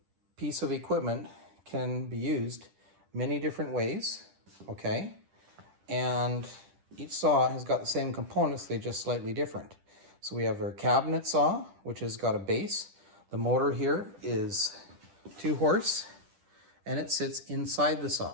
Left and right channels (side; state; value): left; late; 10 ms